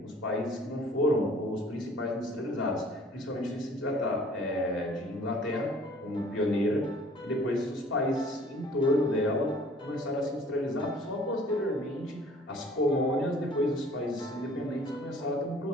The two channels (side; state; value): both; normal; correlation 0.53